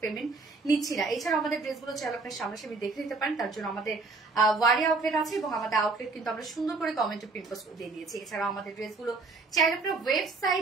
পেমেন্ট নিচ্ছি না। এছাড়া আমাদের ড্রেসগুলো চাইলে আপনার সামনাসামনি দেখে নিতে পারেন, তার জন্য আমাদের ওয়ারি আউটলেট আছে এবং আমাদের আউটলেট কিন্তু আমরা সুন্দর করে কমেন্টে প্রিন্ট পোস্ট দিয়ে দিয়েছি। এছাড়াও আমাদের ড্রেসগুলো চাইলে আপনারা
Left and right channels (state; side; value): quieter; left; 3.8 dB